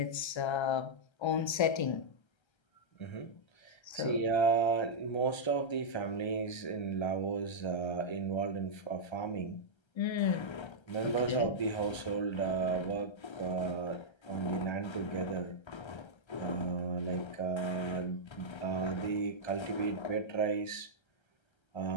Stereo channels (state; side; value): late; right; 1.3 ms